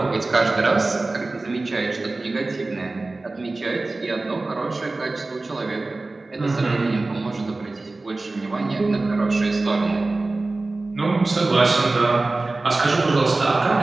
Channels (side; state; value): left; quieter; 3.2 dB